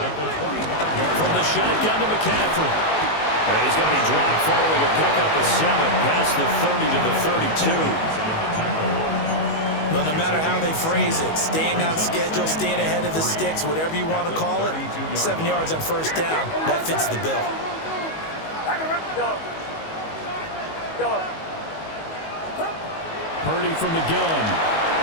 the 25. From the shotgun to McCaffrey. And he's going to be dropped following a pickup of 7 past the 30 to the 32. Well, no matter how they phrase it, staying on schedule, staying ahead of the sticks, whatever you want to call it, 7 yards on first down, that fits the bill. Purdy from the gun.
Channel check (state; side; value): late; right; 19 ms